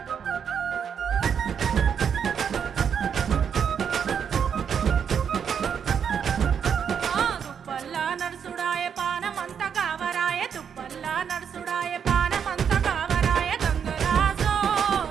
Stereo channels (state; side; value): quieter; left; 7.5 dB